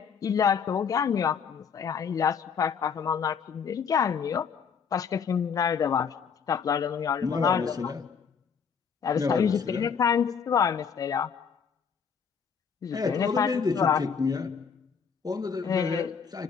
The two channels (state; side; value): quieter; right; 6.5 dB